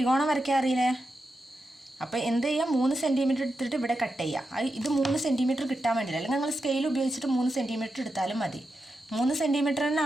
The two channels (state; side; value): normal; both; correlation 0.88